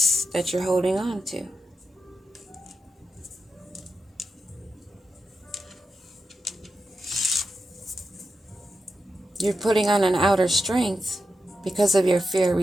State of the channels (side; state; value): both; normal; correlation 0.88